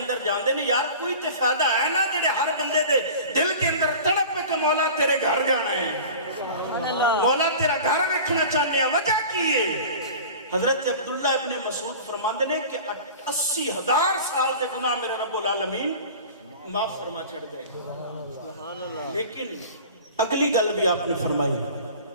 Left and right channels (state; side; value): inverted; both; correlation -0.39